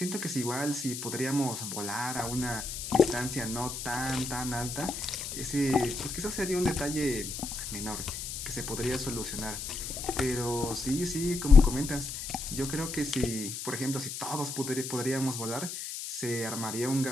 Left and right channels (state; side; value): noise; left; hiss, 6 dB below the sound